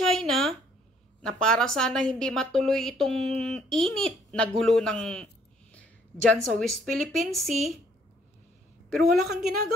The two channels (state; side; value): normal; both; correlation 0.64